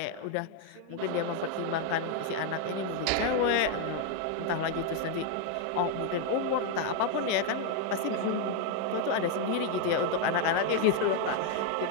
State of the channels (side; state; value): both; different; correlation 0.00